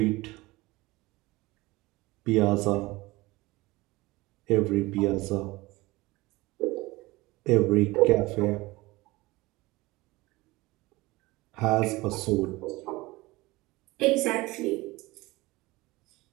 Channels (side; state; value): left; quieter; 21.0 dB